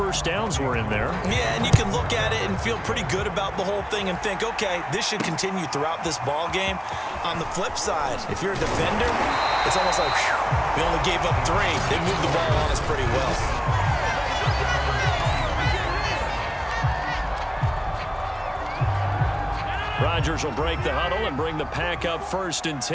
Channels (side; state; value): both; identical; correlation 1.00